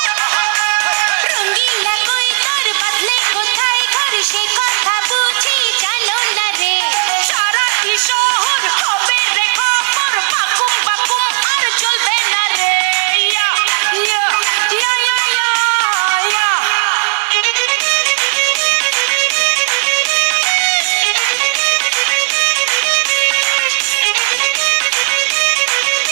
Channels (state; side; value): silent; left; digital silence